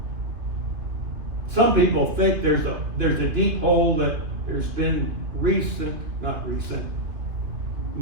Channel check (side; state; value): left; late; 3.1 ms